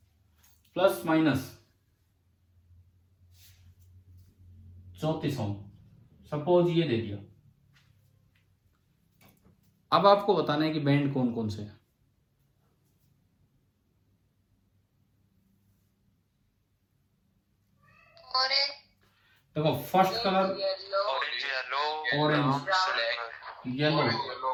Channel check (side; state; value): both; identical; correlation 1.00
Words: प्लस माइनस 34 ओम, सपोज ये दे दिया। अब आपको बताना है कि बैंड कौन कौन से हैं। देखो first colour orange, yellow.